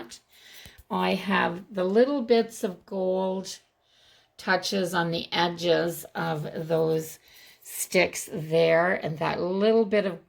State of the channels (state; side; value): identical; both; correlation 1.00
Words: I have the little bits of gold touches on the edges of those sticks there. And that little bit